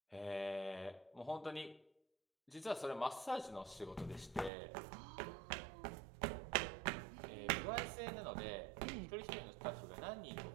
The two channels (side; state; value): left; drops out; at 4.5 s